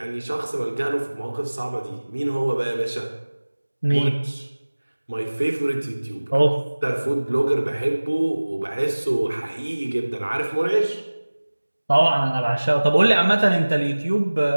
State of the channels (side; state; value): both; inverted; correlation -1.00